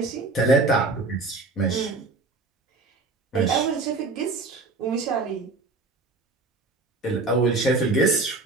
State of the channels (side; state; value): left; quieter; 3.5 dB